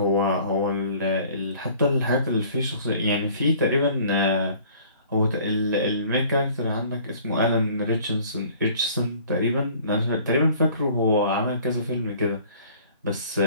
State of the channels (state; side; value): inverted; both; correlation -0.53